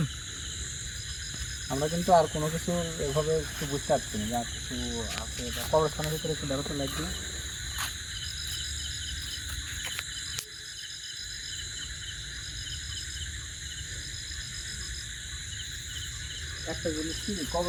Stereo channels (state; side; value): identical; both; correlation 1.00